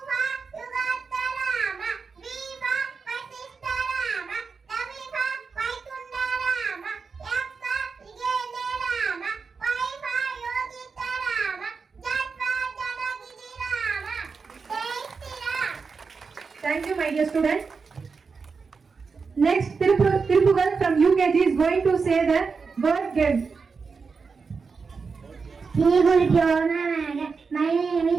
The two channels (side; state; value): left; quieter; 5.0 dB